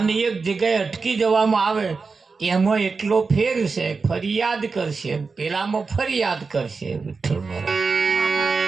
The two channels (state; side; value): quieter; left; 4.5 dB